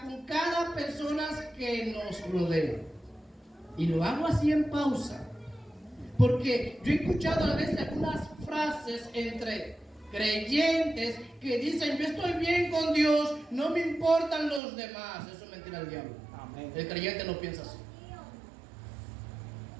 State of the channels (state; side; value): drops out; left; at 14.6 s